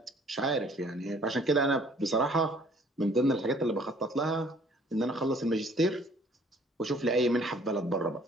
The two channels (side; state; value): both; normal; correlation 0.57